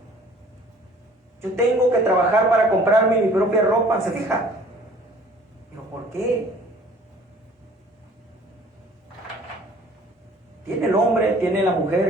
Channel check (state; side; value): normal; both; correlation 0.53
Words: Yo tengo que trabajar para comprarme mi propia ropa. ¿Se fija? ¿Pero por qué? Tiene el hombre, tiene la